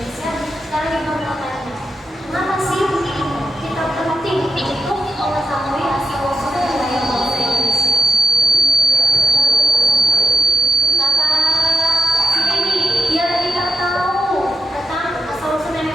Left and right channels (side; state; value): both; normal; correlation 0.83